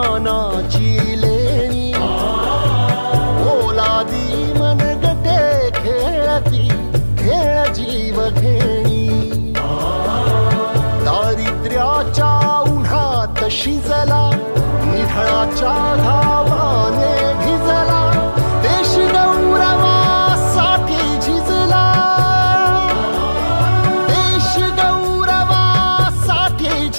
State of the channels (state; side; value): inverted; both; correlation -1.00